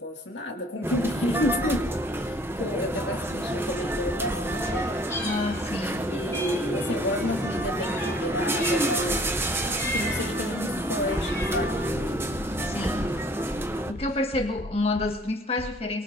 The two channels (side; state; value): both; normal; correlation 0.54